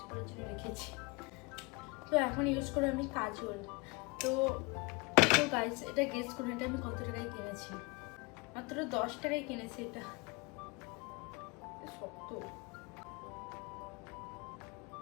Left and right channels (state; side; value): quieter; right; 27.7 dB